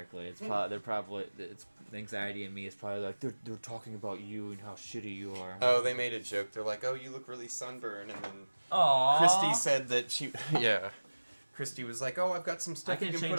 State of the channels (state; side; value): inverted; both; correlation -1.00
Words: It's the anxiety in me is probably like they're talking about you and how shitty you are. Oh, they made a joke. They're like, "Oh, you look really sunburned," and then Aww. Christy said that she, yeah, Christy was like, "Oh, I've got some stuff I can you can change